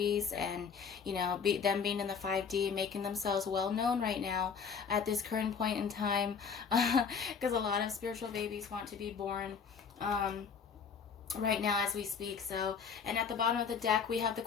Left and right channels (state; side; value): quieter; right; 6.3 dB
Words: and, you know, them being in the 5D, making themselves well known right now at this current point in time, because a lot of spiritual babies want to be born right now as we speak. So, and at the bottom of the deck we have the